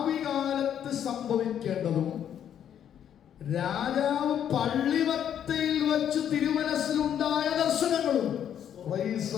കാലത്ത് സംഭവിക്കേണ്ടതും രാജാവ് പള്ളിമത്തയിൽ വെച്ച് തിരുമനസ്സിലുണ്ടായ ദർശനങ്ങളും.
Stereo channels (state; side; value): quieter; right; 9.5 dB